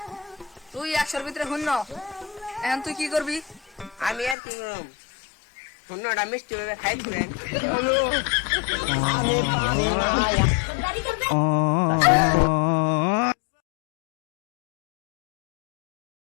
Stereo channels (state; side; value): drops out; right; at 4.4 s